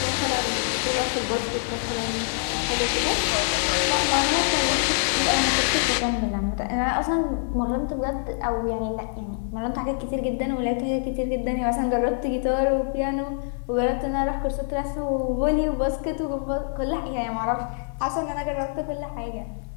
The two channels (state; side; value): silent; right; 58 dB below the other